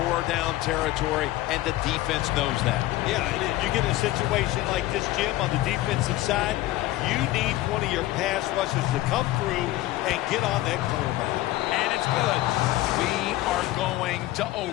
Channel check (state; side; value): quieter; right; 16.4 dB